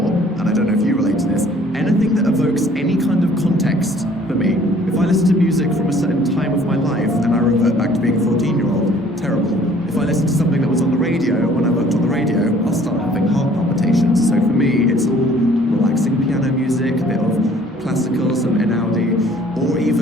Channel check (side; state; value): both; normal; correlation 0.56